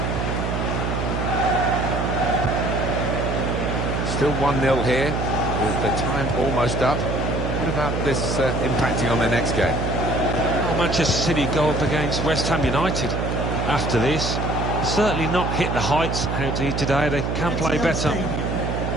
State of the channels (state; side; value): noise; right; hum, 1 dB below the sound